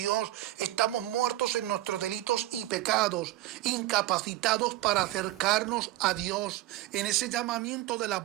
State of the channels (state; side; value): quieter; left; 15.9 dB